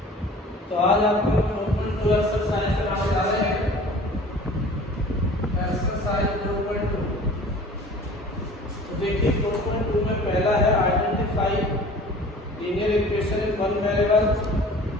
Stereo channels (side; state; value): both; normal; correlation 0.45